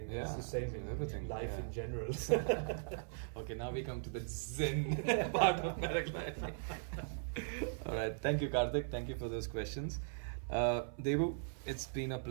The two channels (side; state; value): left; silent; 52 dB below the other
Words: Yeah, It's the same in everything, life yeah. in general. Okay, now we come to the Zen part of paragliding. All right, thank you, Karthik. Thank you for those questions. Debu, it's been a